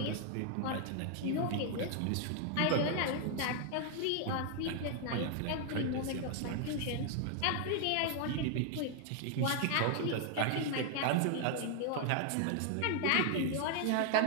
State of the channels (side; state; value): both; different; correlation 0.00